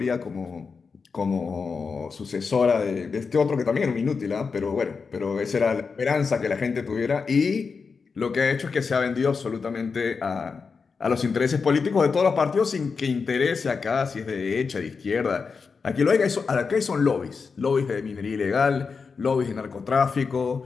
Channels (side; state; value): right; quieter; 5.1 dB